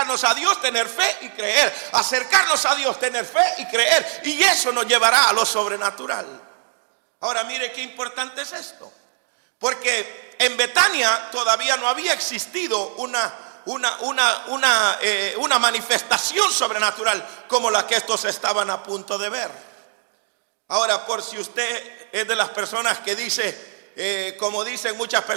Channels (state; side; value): silent; left; digital silence